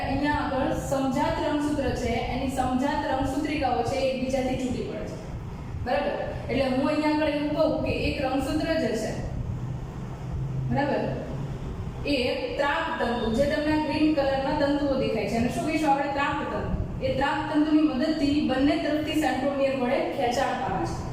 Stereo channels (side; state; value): both; identical; correlation 1.00